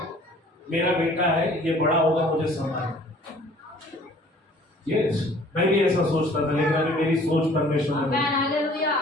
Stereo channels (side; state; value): both; normal; correlation 0.53